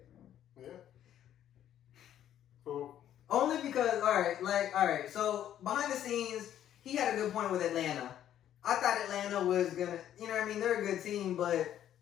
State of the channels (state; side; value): quieter; right; 11.0 dB